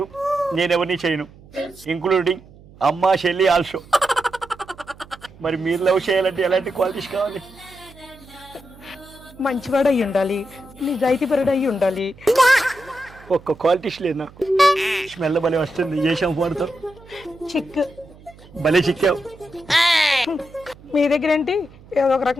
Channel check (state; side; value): noise; right; hum, 23 dB below the sound